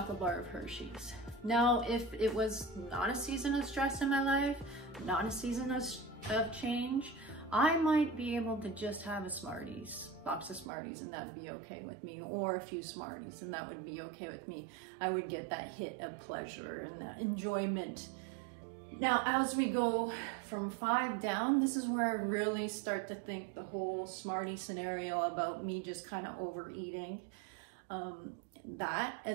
bar of Hershey's. Now, if it was not a season of stress in my life, not a season of change, I might be able to just have a box of Smarties, and that would be okay with me, or a few Smarties, and that would be okay with me. I would get that hit of pleasure and that enjoyment. Now, as we go from 5 down, this is where I really start to think the whole Smartie scenario about me just kind of overeating. That,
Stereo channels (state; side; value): drops out; left; at 10.7 s